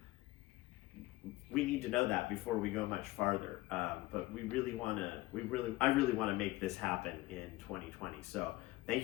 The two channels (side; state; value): right; quieter; 19.0 dB